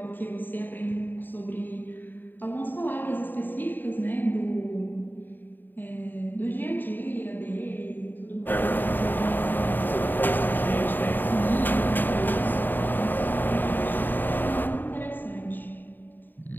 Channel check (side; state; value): right; late; 0.091 ms